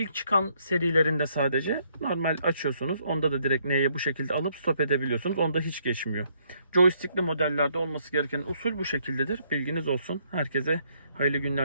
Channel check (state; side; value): inverted; both; correlation -0.70